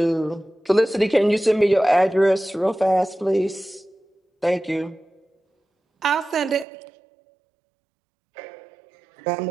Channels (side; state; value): left; drops out; at 6.7 s